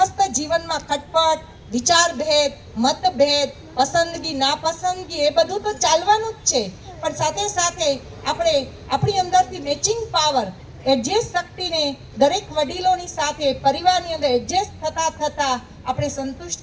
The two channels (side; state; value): both; identical; correlation 1.00